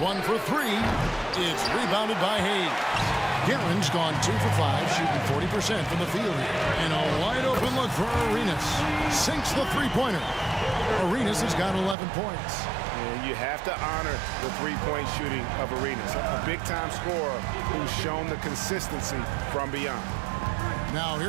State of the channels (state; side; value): drops out; left; at 12.0 s